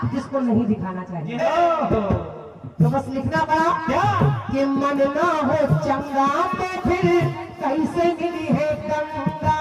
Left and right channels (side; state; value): both; identical; correlation 1.00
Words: जिसको नहीं दिखाना चाहिए। तो बस लिखना पड़ा क्या कि मन ना हो चंगा तो फिर कैसे मिली है गंगा